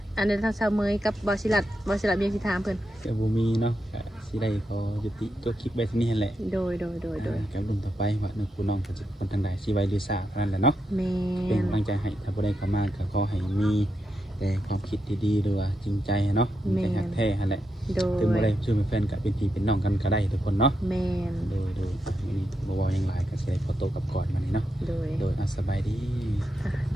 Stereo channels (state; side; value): normal; both; correlation 0.85